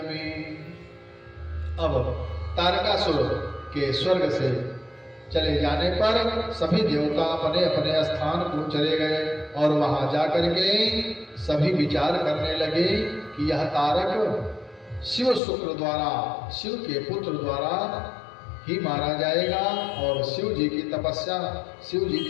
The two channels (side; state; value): right; drops out; at 15.4 s